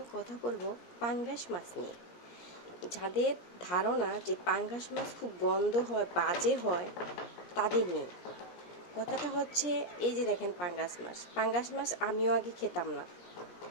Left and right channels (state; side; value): late; right; 17 ms